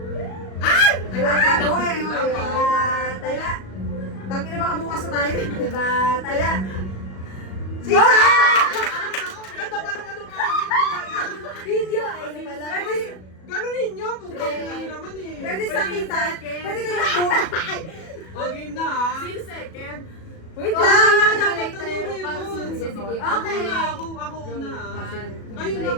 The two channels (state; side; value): late; right; 37 ms